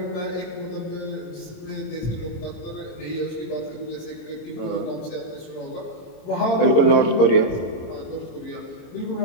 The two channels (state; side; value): late; right; 26 ms